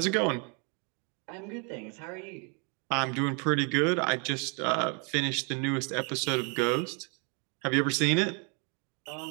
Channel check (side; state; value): left; quieter; 35.4 dB